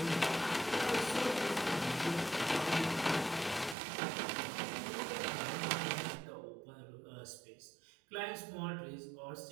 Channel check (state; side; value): drops out; left; at 3.8 s